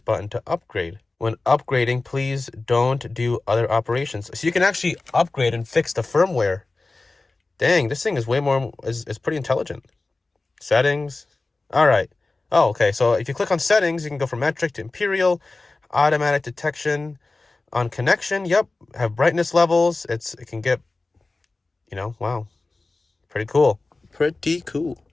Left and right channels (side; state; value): right; quieter; 3.4 dB